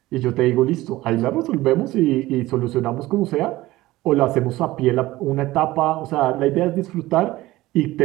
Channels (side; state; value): left; quieter; 17.6 dB